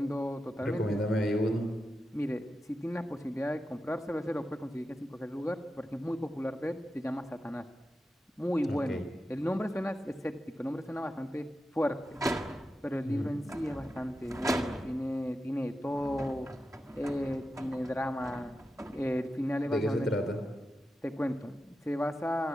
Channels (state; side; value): normal; both; correlation 0.90